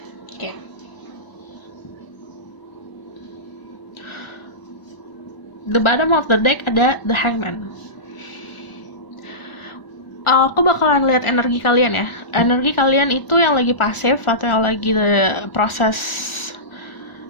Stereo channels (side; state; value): right; late; 1.4 ms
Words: Okay. The bottom of the deck ada the Hangman. Aku bakalan lihat energi kalian ya. Energi kalian itu yang lagi pasif atau yang lagi proses